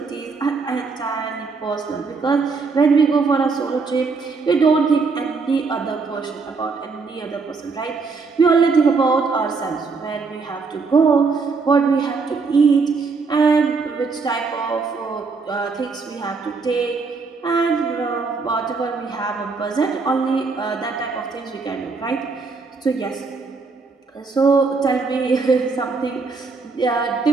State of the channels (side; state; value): left; quieter; 4.5 dB